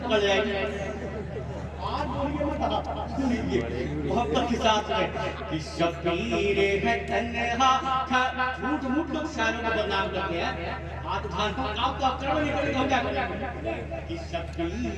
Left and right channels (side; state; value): both; identical; correlation 1.00